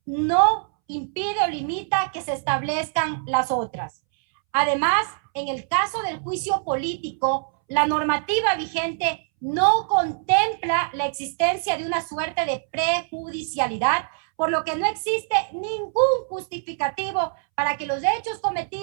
no impide o limita que se establezcan las otras. Además, en el caso del juicio político, la normativa vigente no contempla la existencia de una suerte de prejudicialidad, por lo que no existe ningún justificativo para que los hechos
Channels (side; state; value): left; silent; 63 dB below the other